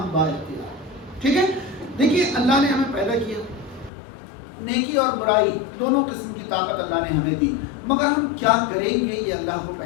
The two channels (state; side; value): drops out; right; at 3.9 s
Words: بااختیار. ٹھیک ہے. دیکھیے، اللہ نے ہمیں پیدا کیا، نیکی اور برائی دونوں قسم کی طاقت اللہ نے ہمیں دی، مگر ہم کیا کریں گے یہ اللہ کو